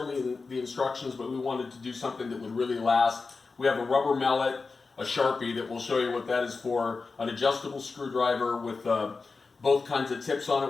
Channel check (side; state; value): right; quieter; 4.3 dB